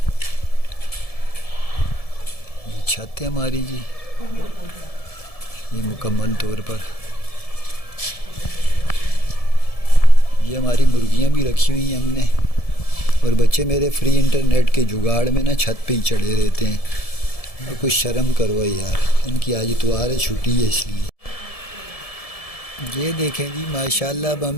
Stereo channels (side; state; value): right; late; 1.7 ms